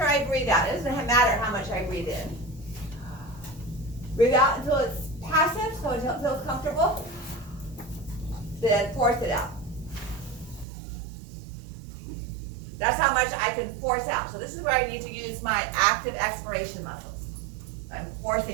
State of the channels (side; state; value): left; drops out; at 10.7 s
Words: I breathe out, it doesn't matter how much I breathe in. Breathe out until it's passive, so until it feels comfortable, then force it out. That's how much I can force out. So this is where I need to use my active expiration muscles. I'm